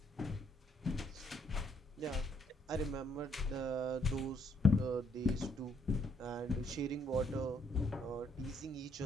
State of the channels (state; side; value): normal; both; correlation 0.70